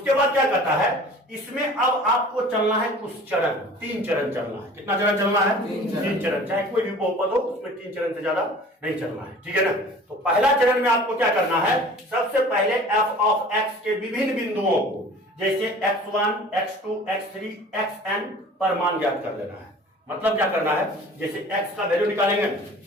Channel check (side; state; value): both; normal; correlation 0.45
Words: बाद क्या कहता है, इसमें अब आपको चलना है कुछ चरण, 3 चरण चलना है। कितना चरण चलना है? 3 चरण। चाहे कोई भी बहुपद हो उसमें 3 चरण से ज्यादा नहीं चलना है, ठीक है ना। तो पहला चरण में आपको क्या करना है, सबसे पहले f ऑफ x के विभिन्न बिंदुओं को जैसे x1, x2, x3, xn पर मान ज्ञात कर लेना है। मतलब क्या करना है, जैसे x का वैल्यू निकालेंगे,